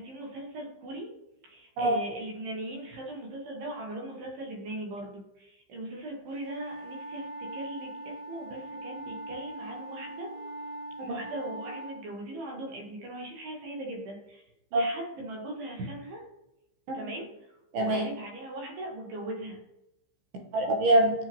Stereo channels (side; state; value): left; late; 15 ms